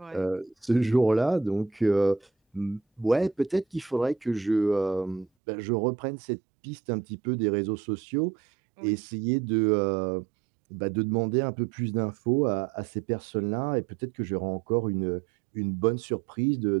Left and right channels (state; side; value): drops out; left; at 5.2 s